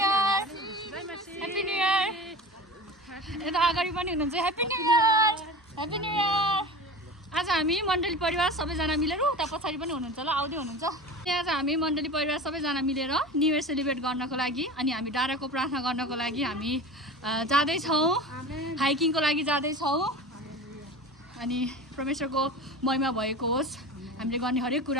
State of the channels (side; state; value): both; normal; correlation 0.33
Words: happy new year यता अगाडि पनि हुनुहुन्छ happy new year happy new year आज हामी मण्डली परिवार सबैजना मिलेर उता पछाडि पनि हुनुहुन्छ ल आउँदै हुनुहुन्छ आज हामी मण्डली परिवार सबैजना मिलेर न्यू इयर सेलिब्रेट गर्नको लागि अनि हामी डाँडाको प्रार्थना गर्नको लागि हामी जाँदैछौँ हाइकिङको लागि जाँदैछौँ अनि परमेश्वरको महिमा भएको होस् हामीले गर्ने हरेक